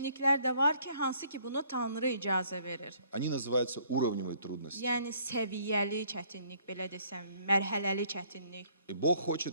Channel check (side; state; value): both; inverted; correlation -0.63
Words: də var ki, hansı ki bunu Tanrı icazə verir. Они называются уровневые трудности. Yəni səviyyəli çətinlik, belə desəm, mərhələli çətinlik. И Бог